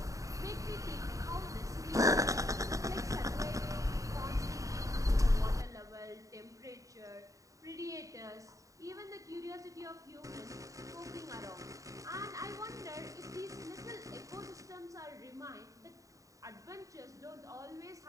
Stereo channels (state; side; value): late; left; 0.16 ms